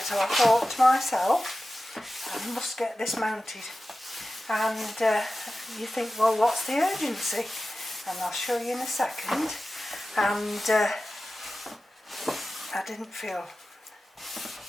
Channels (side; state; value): both; normal; correlation 0.94